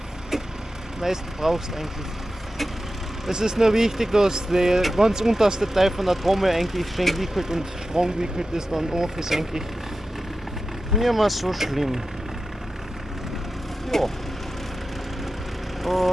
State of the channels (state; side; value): normal; both; correlation 0.92